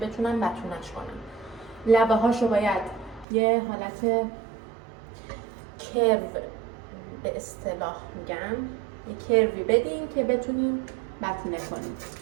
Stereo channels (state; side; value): drops out; left; at 3.2 s